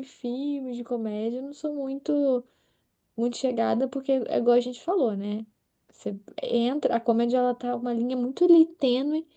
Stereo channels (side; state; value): both; identical; correlation 1.00